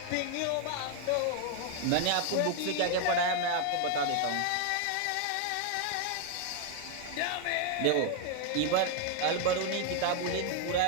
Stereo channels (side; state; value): both; different; correlation 0.01